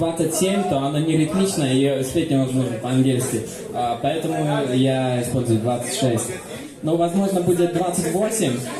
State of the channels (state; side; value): identical; both; correlation 1.00